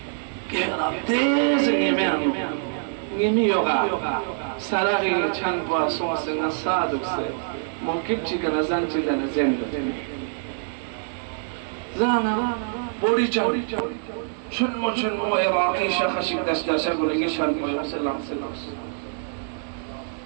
گهرا تیز نیمی یوگا سراغی چند با سوس نصادق سے موکب چیکا نزن چیکا نزن زانا بوری چاوی چنمو عراقی شخصی دستاشا گلنگی شرمو سلام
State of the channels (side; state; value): left; silent; 62 dB below the other